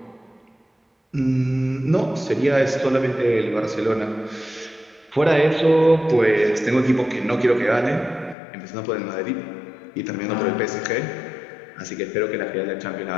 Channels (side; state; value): right; drops out; at 8.3 s